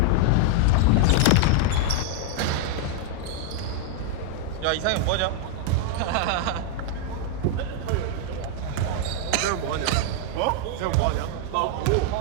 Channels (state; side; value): different; both; correlation 0.00